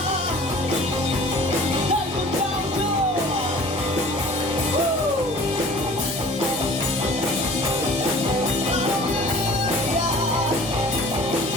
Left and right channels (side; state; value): both; normal; correlation 0.46